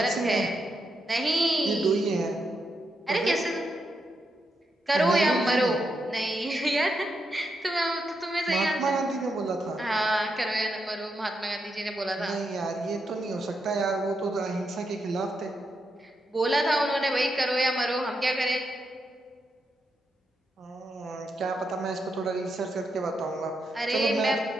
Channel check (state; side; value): normal; both; correlation 0.83